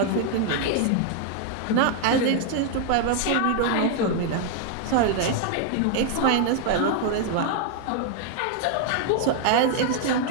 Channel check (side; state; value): both; different; correlation 0.00